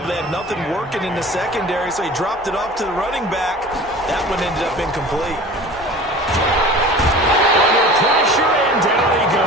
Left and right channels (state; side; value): normal; both; correlation 0.40